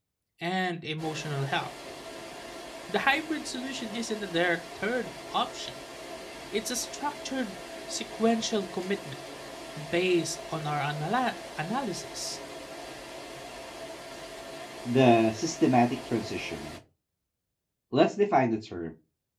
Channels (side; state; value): both; identical; correlation 1.00